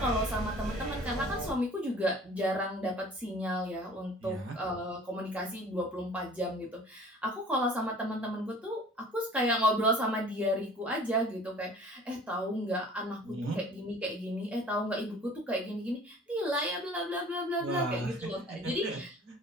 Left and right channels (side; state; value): both; normal; correlation 0.48